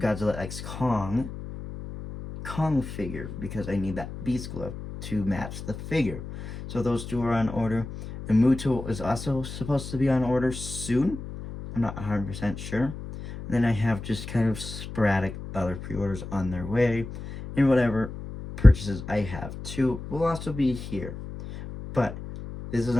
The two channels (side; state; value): left; noise; hum, 10 dB below the sound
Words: Godzilla X Kong figure because I need that Beast Glove to match the figure. So those two are on order. The Muto is also supposed to be on order soon. I'm not 100% sure. And then I have just kind of sporadic other pre-orders on their way. And whatever purchases I have too will also be here. But this is